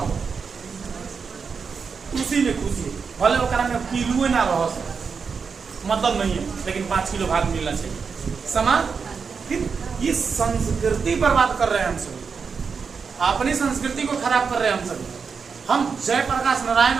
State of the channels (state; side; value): quieter; left; 5.6 dB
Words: उसी में खुशी है। भले वो में किलो ना रहो, मतलब नहीं है, लेकिन 5 किलो भात मिलना चाहिए। समाज फिर ये संस्कृति बर्बाद कर रहे हैं हम सभी, अपनी संस्कृति को खराब कर रहे हैं हम सभी। हम जयप्रकाश नारायण